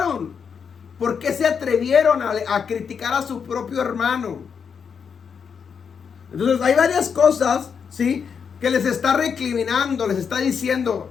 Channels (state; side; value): quieter; right; 6.6 dB